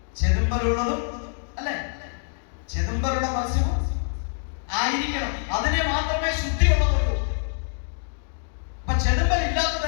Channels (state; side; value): silent; right; digital silence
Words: ചെതുമ്പലുള്ളതും അല്ലെ, ചെതുമ്പലുള്ള മത്സ്യവും ആയിരിക്കണം, അതിനെ മാത്രമേ ശുദ്ധിയുള്ളതുള്ളൂ. അപ്പൊ ചെതുമ്പൽ